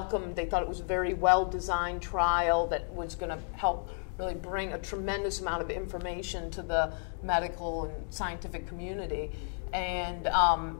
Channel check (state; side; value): silent; right; 56 dB below the other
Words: They thought it was a very well-designed trial that was going to help really bring a tremendous amount of information to the medical and scientific community. And